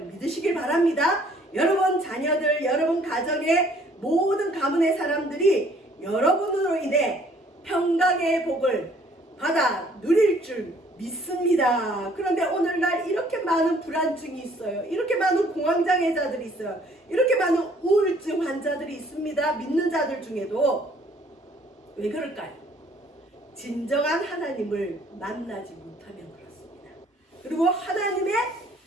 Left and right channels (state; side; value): normal; both; correlation 0.60